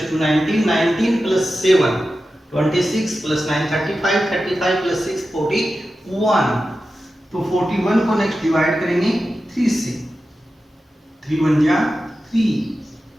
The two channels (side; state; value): both; normal; correlation 0.92